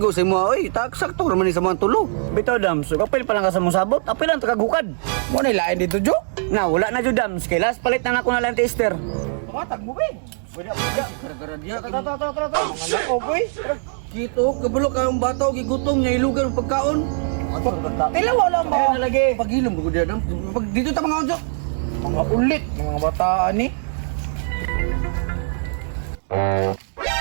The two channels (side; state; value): left; silent; 65 dB below the other